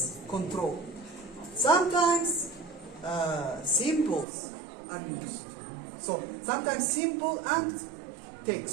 control. Sometimes symbols are used. So sometimes symbol and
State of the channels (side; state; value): left; drops out; at 4.2 s